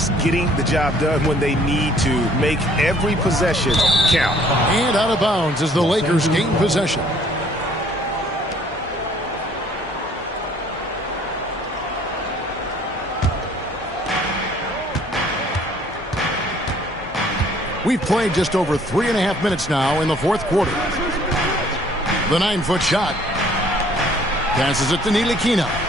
getting the job done when they need to. Make every possession count. And out of bounds as the Lakers gain possession. We've played just over 3.5 minutes now in the 4th quarter. The 9-foot shot. Passes it to Ntilikina.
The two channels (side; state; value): both; normal; correlation 0.58